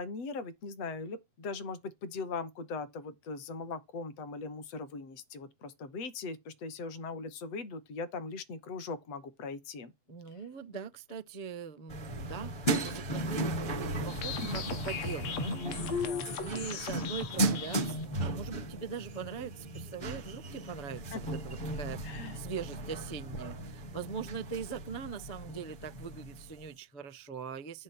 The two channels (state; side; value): late; right; 7.7 ms